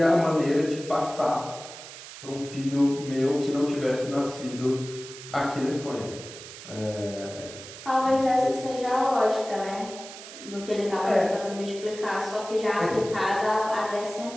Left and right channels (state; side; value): noise; right; hiss, 14 dB below the sound